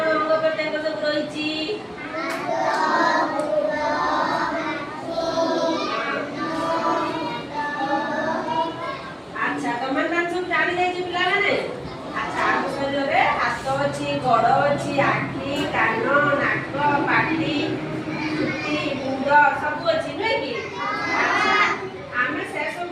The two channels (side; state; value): both; identical; correlation 1.00